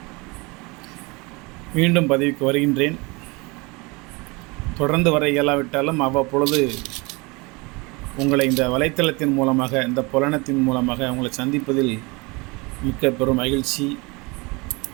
மீண்டும் பதிவுக்கு வருகின்றேன். தொடர்ந்து வர இயலாவிட்டாலும் அவ்வப்பொழுது உங்களை இந்த வலைத்தளத்தின் மூலமாக, இந்த புலனத்தின் மூலமாக உங்களை சந்திப்பதில் மிக்க பெரும் மகிழ்ச்சி.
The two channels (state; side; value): quieter; left; 26.4 dB